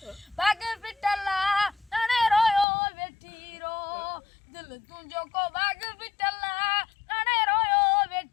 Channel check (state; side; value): drops out; right; at 2.7 s